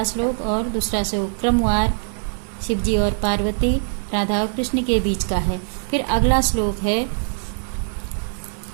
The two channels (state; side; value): silent; left; digital silence